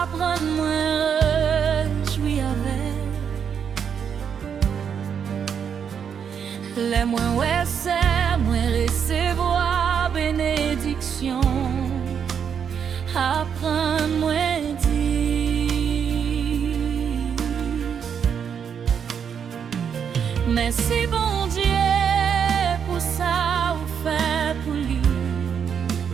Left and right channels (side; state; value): left; quieter; 7.5 dB